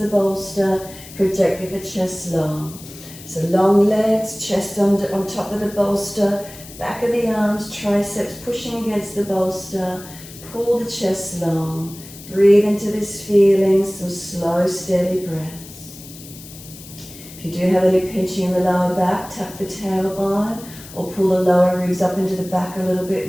bolster, projecting the chest long. So long legs, chest on top of the bolster, back of the arms, triceps pushing against the bolster, pull the chest long. Breathe into this feeling, some slow, steady breaths. If you do have any pinching in the lower back, tap the tailbone or pull the lower ribs up into the back a little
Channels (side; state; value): left; noise; hiss, 17 dB below the sound